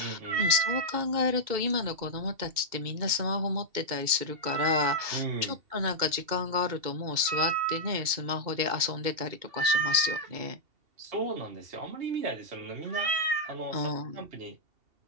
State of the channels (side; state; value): left; late; 2.7 ms